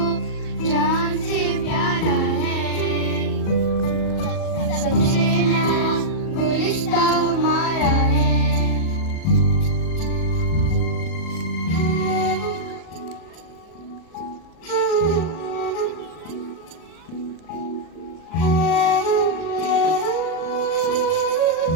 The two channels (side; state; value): right; late; 37 ms